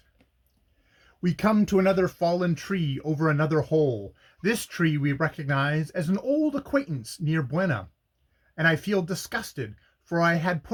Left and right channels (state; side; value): identical; both; correlation 1.00